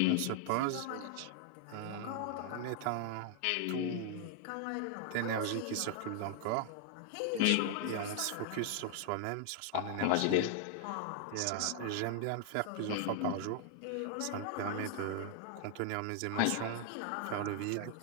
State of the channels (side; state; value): both; different; correlation 0.00